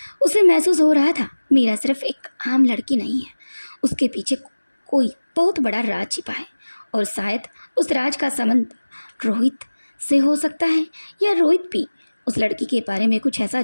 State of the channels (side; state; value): both; inverted; correlation -1.00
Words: उसे महसूस हो रहा था मीरा सिर्फ एक आम लड़की नहीं है, उसके पीछे कोई बहुत बड़ा राज छिपा है। और शायद उस राज का संबंध रोहित से हो सकता है, या रोहित भी उस लड़की के बारे में कुछ ऐसा